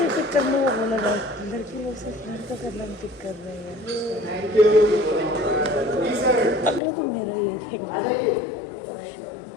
पिक करने को बोला था, लड़की लोग से लड़का करना पिक कर रहे हैं। अगला तो मेरा ही है।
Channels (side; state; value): right; drops out; at 6.8 s